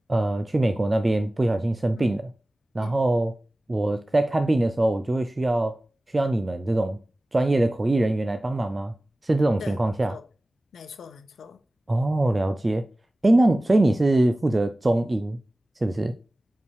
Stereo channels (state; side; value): normal; both; correlation 0.97